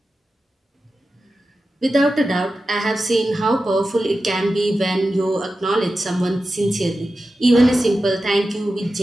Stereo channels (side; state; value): both; normal; correlation 0.92